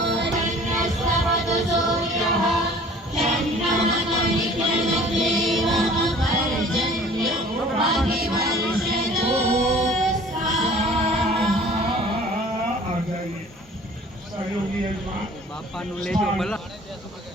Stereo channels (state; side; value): normal; both; correlation 0.49